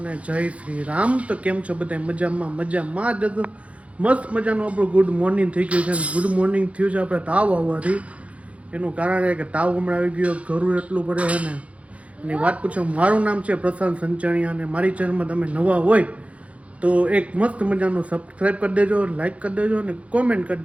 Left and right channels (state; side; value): late; left; 0.064 ms